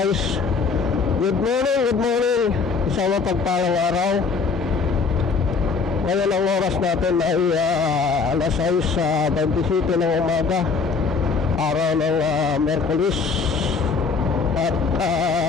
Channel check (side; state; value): right; quieter; 5.0 dB